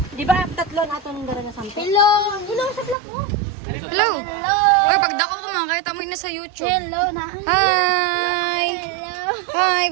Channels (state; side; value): drops out; left; at 3.0 s